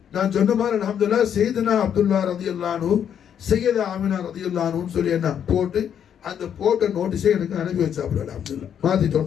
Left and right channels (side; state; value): right; quieter; 8.8 dB